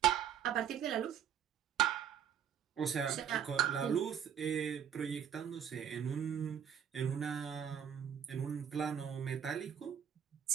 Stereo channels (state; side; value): quieter; left; 8.6 dB